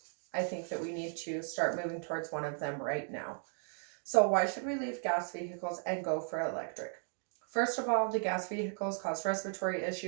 I think that we need to start moving towards one of them right now. So why should we leave gas vehicles and go for electric? First of all, the gas vehicles cause respiratory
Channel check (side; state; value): left; silent; 54 dB below the other